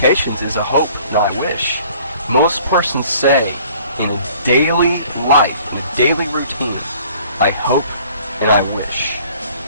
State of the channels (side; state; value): both; inverted; correlation -0.54